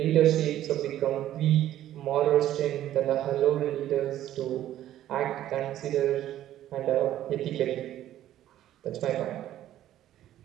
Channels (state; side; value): quieter; left; 12.7 dB